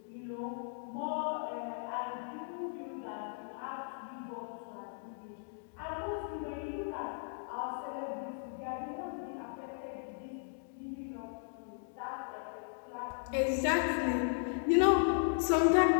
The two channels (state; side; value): silent; right; digital silence